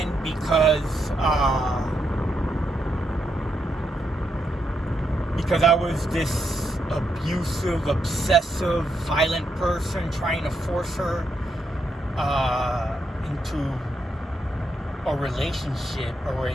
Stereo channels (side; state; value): both; normal; correlation 0.81